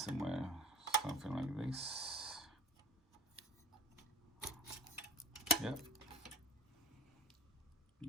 something like this.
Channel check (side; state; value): both; normal; correlation 0.41